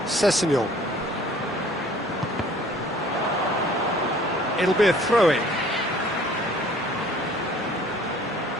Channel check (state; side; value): normal; both; correlation 0.53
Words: Sessegnon. It'll be a throw-in.